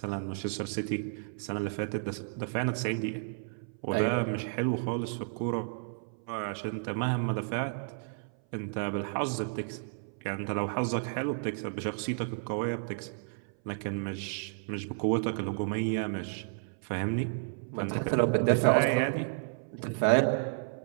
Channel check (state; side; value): silent; left; 56 dB below the other